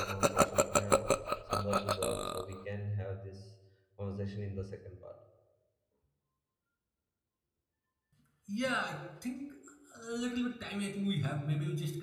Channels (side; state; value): both; identical; correlation 1.00